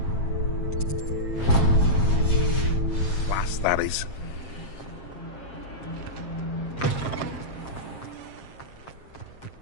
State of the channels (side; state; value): right; late; 7.5 ms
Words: Class, that is.